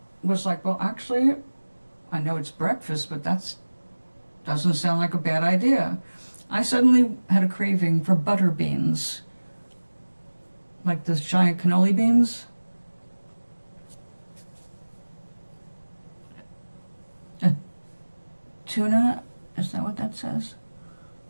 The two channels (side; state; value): both; inverted; correlation -1.00